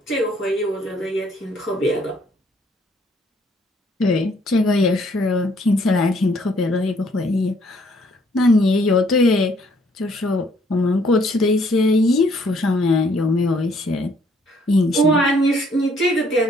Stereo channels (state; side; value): normal; both; correlation 0.65